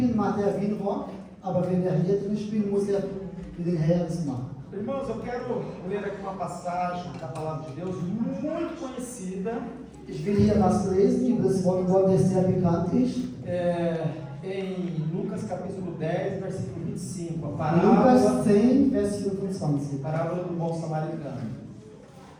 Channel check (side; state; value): both; identical; correlation 1.00